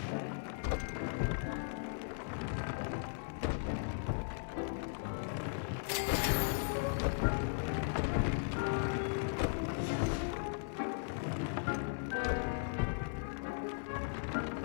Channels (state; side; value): silent; right; 53 dB below the other